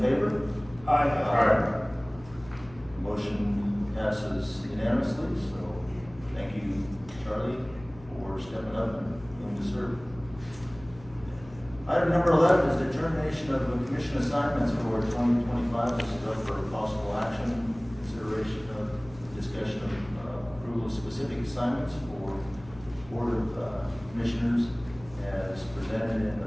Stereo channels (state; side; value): noise; left; hum, 20 dB below the sound